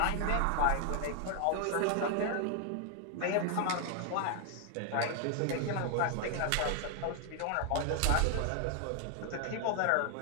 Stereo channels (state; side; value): different; both; correlation 0.00